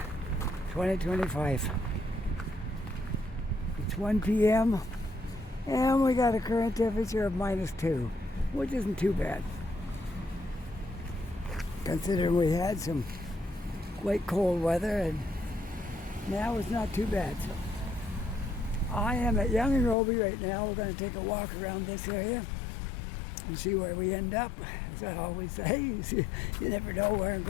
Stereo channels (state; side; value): drops out; right; at 20.0 s